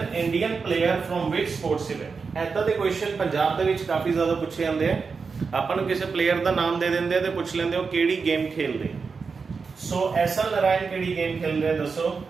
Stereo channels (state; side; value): quieter; left; 5.1 dB